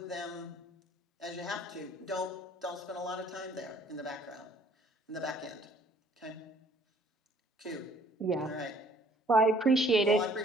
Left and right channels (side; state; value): both; normal; correlation 0.59